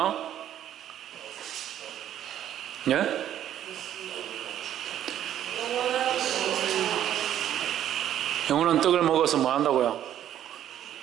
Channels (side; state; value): left; quieter; 11.1 dB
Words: 예? 영원한 떡을 먹어서 뭐 한다고요?